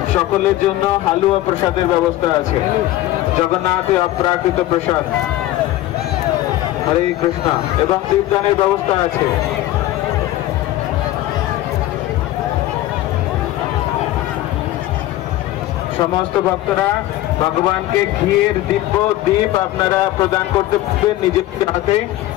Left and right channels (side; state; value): right; quieter; 15.2 dB